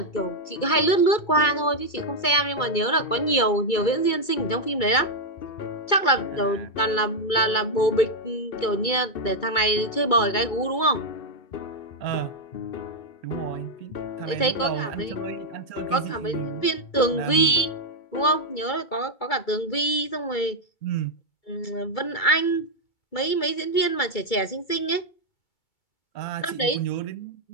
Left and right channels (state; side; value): late; right; 2.3 ms